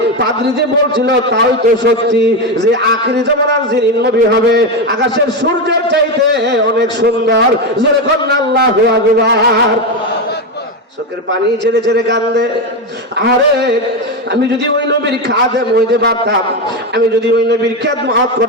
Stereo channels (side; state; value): both; normal; correlation 0.12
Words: পাদ্রী যে বলছিল তাই তো সত্যি, যে আখিরি জামানার যিনি নবী হবে আকাশের সূর্যের চাইতে অনেক সুন্দর। জোরে কন্যা আল্লাহু আকবার। চোখের পানি ছেড়ে ছেড়ে কান্দে। আরে আমি যদি ওই নবীর খাদেম হইতে পারতাম, আমি যদি ওই নবীর খেদমত